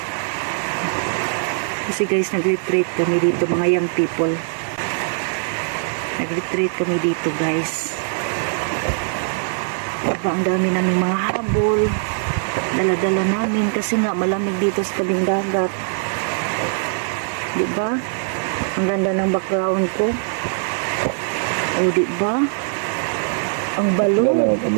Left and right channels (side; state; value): left; silent; digital silence